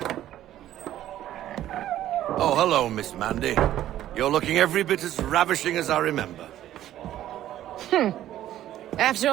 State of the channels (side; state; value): left; quieter; 12.7 dB